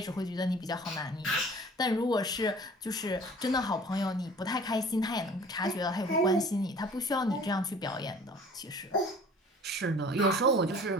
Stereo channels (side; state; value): both; normal; correlation 0.48